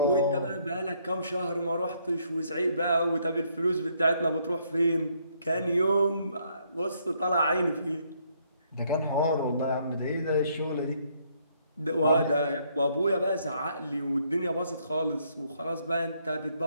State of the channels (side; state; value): both; inverted; correlation -0.70